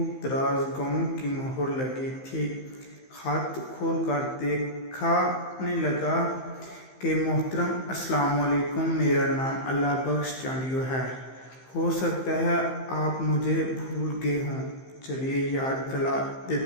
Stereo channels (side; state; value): right; late; 15 ms